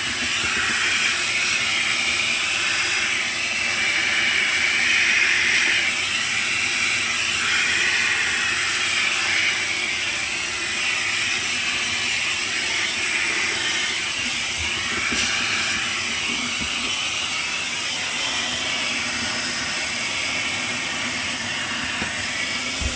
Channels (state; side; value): identical; both; correlation 1.00